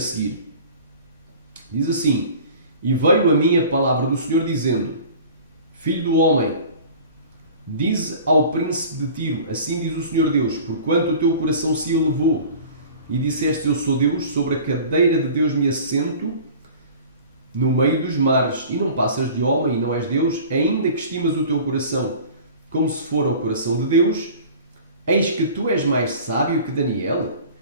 Diz assim: E veio a mim a palavra do Senhor dizendo: Filho do homem, dize ao príncipe de Tiro, assim diz o Senhor Deus, porquanto o teu coração se elevou, e disseste: Eu sou Deus, sobre a cadeira de Deus me assento, no meio dos mares, e não passas de homem, e não és Deus, ainda que estimas o teu coração como se fora o coração de Deus, eis que tu és mais sábio que Daniel,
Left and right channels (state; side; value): inverted; both; correlation -0.43